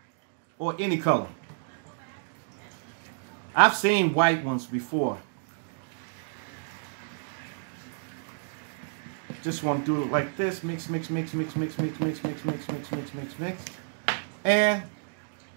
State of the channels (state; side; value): silent; left; digital silence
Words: or any color. I've seen white ones before. Just want to do it like this. Mix, mix, mix, mix, mix, mix, mix, mix, mix, mix, mix, mix, mix. And